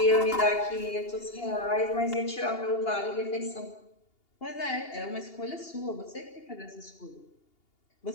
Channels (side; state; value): right; late; 2.8 ms